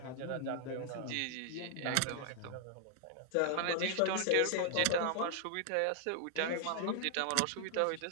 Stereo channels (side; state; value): both; different; correlation 0.00